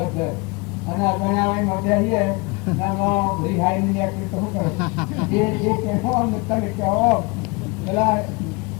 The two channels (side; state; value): right; quieter; 28.1 dB